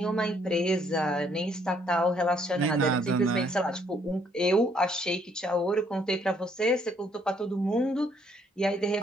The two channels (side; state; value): both; normal; correlation 0.67